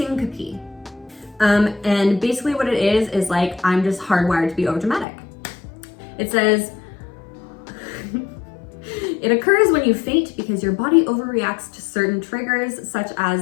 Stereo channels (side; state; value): right; drops out; at 5.1 s